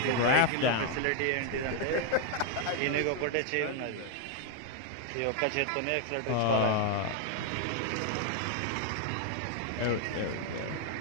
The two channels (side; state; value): both; different; correlation 0.01